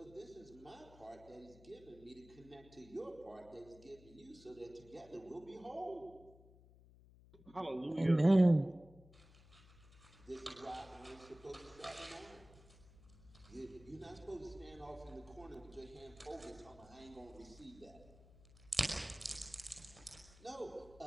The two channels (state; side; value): noise; left; hum, 22 dB below the sound